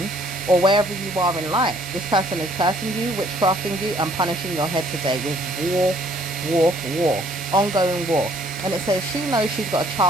or wherever you are in life. This person is cursing you, witchcrafting you, and punishing your head today with war, ongoing war. And it says she knows she's got a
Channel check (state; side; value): normal; both; correlation 0.61